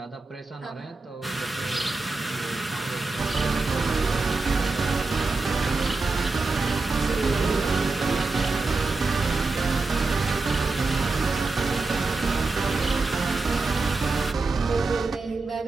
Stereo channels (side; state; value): left; quieter; 3.6 dB